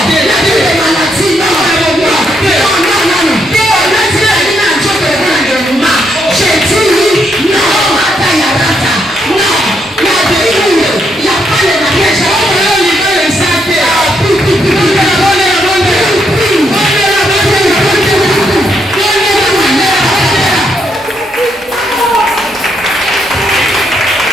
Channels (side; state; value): both; normal; correlation 0.77